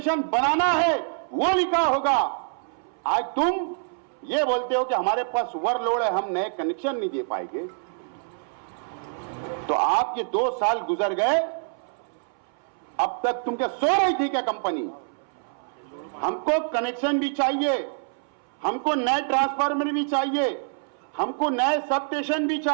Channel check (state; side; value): silent; left; 61 dB below the other